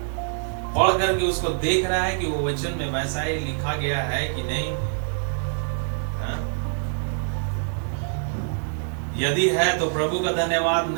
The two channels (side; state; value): left; silent; 62 dB below the other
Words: पढ़ करके उसको देख रहा है कि वो वचन में वैसा ही लिखा गया है कि नहीं। यदि है तो प्रभु का धन्यवाद,